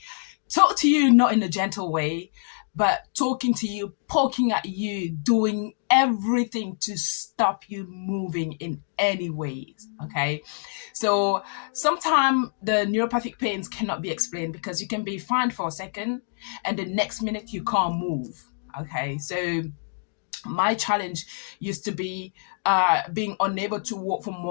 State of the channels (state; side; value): silent; right; digital silence